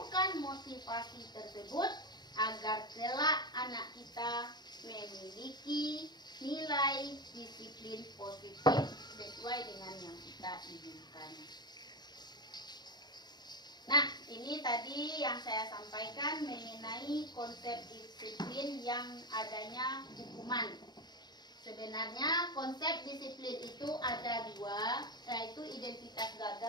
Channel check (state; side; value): late; right; 0.20 ms